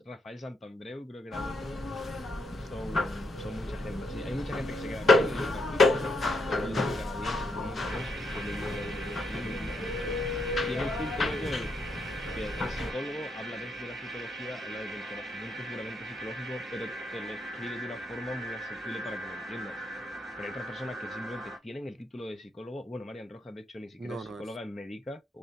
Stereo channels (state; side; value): normal; both; correlation 0.78